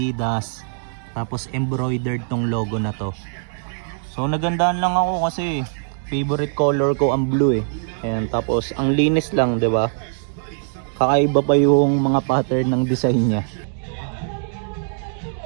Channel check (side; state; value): left; silent; digital silence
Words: Tapos embroidered tong logo na to. So nagandaan lang ako kasi favorite color ko ang blue eh. Ayan. Tapos ang linis lang, 'di ba? Kakaiba pa yung mga pattern ng design niya.